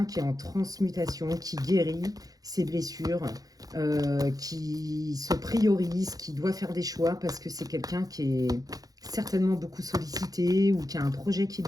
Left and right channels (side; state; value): left; late; 0.18 ms